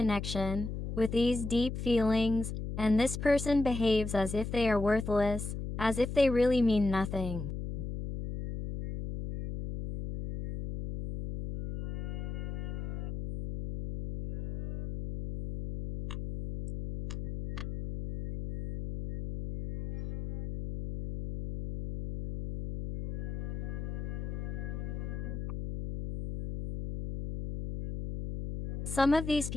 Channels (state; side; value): noise; left; hum, 6 dB below the sound